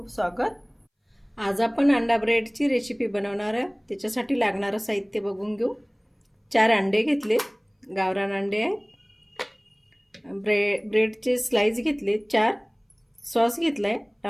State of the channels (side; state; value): both; identical; correlation 1.00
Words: स्वागत। आज आपण अंडा ब्रेडची रेसिपी बनवणार आहे। त्याच्यासाठी लागणारं साहित्य बघून घेऊ। 4 अंडे घेतले, गावरान अंडे आहेत। ब्रेडचे स्लाइस घेतले 4। सॉस घेतलाय